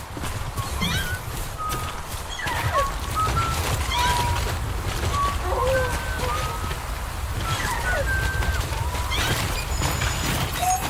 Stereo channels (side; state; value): both; identical; correlation 1.00